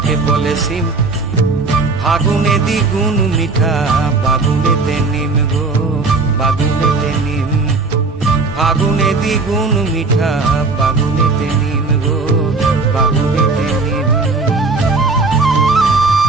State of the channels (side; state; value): left; quieter; 3.8 dB